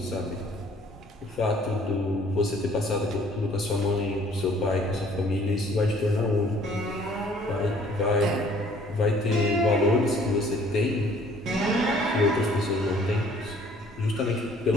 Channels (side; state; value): both; normal; correlation 0.57